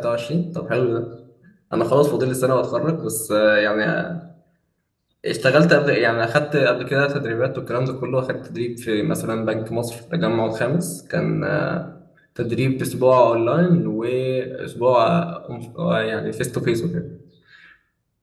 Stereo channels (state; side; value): identical; both; correlation 1.00